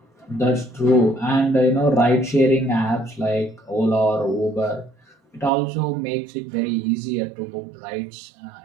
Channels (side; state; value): left; drops out; at 5.5 s